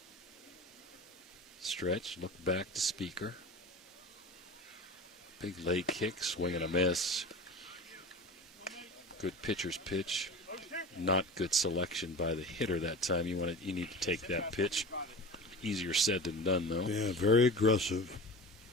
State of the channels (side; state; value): both; normal; correlation 0.33